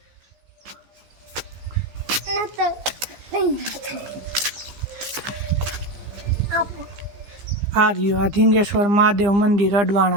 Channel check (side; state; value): left; late; 15 ms